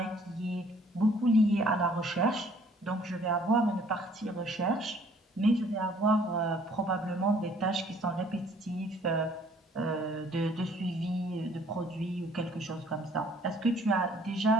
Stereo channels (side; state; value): both; normal; correlation 0.58